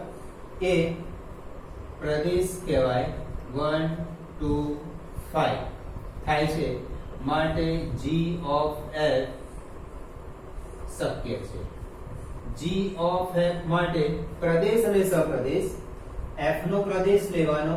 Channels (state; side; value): identical; both; correlation 1.00